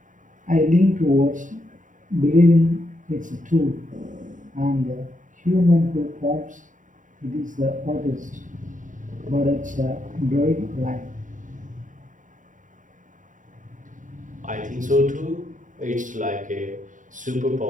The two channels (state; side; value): late; left; 0.37 ms